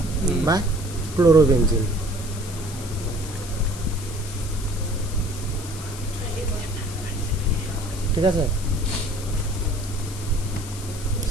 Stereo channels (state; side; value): noise; left; hiss, 13 dB below the sound